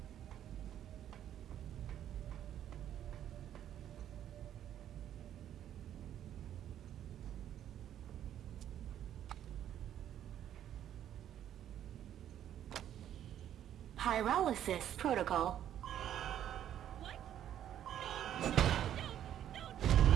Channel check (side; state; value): left; quieter; 10.8 dB